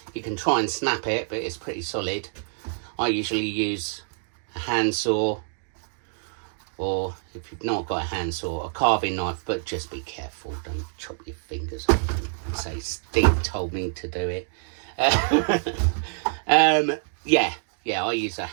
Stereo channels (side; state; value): left; silent; 61 dB below the other